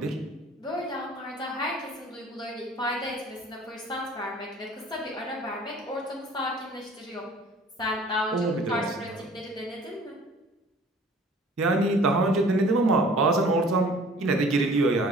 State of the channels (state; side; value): normal; both; correlation 0.50